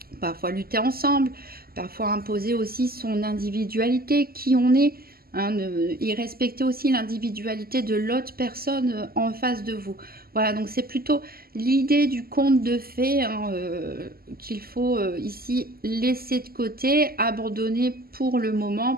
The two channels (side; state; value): left; late; 0.44 ms